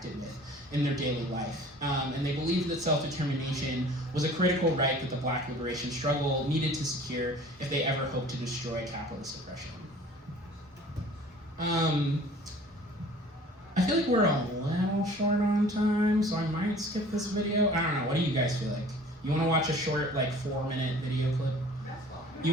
with in their daily life. And they believed that self-determination was a critical right that the Black liberation struggle needed to secure if they ever hoped to destroy capitalist oppression. I feel like we're a little short on time, so I might skip this video. I don't know, what do you guys feel like? You want to watch a short, 4-minute video clip? You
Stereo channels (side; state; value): both; normal; correlation 0.48